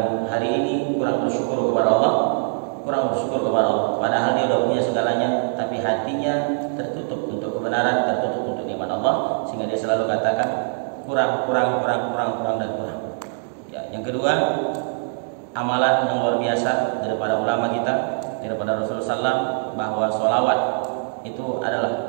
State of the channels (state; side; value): silent; left; digital silence